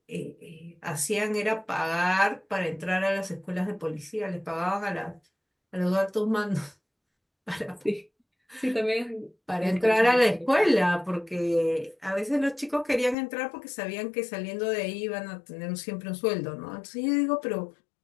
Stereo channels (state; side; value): drops out; right; at 13.2 s